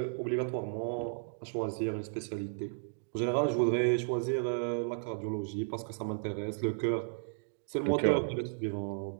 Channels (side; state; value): left; silent; digital silence